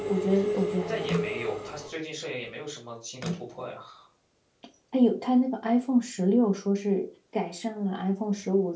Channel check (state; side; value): identical; both; correlation 1.00